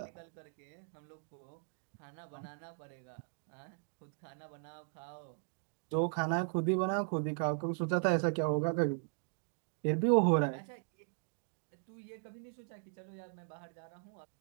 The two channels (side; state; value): left; silent; digital silence